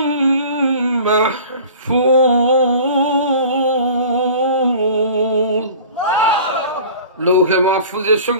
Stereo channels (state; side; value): inverted; both; correlation -0.43